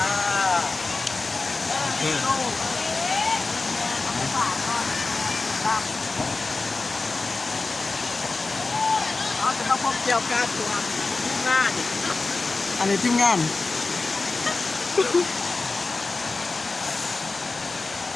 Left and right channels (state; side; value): quieter; right; 3.7 dB